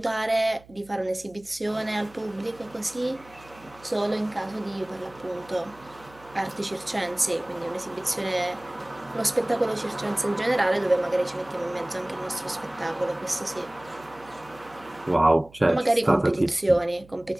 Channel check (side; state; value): right; noise; hum, 24 dB below the sound